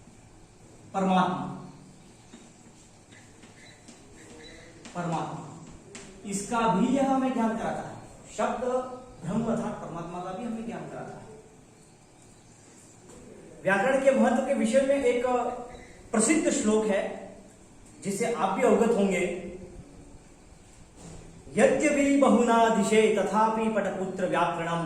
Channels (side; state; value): both; identical; correlation 1.00